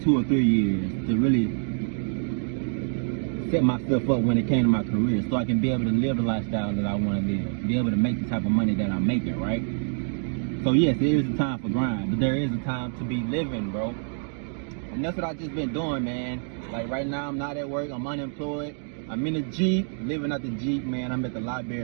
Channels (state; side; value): silent; left; 61 dB below the other